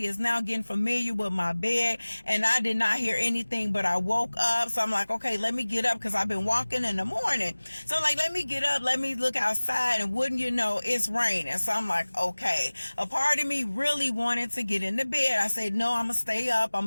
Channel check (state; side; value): inverted; both; correlation -1.00